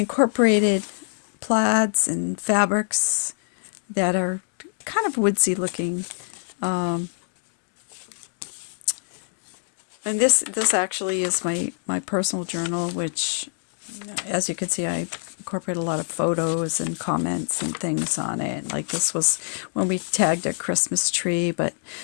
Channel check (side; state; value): right; silent; digital silence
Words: plaids and fabrics that are kind of woodsy looking. And this actually is my personal journal, which, as you can see, I incorporate a lot of photos and comments and things on it. Like this was when we tagged a Christmas tree, but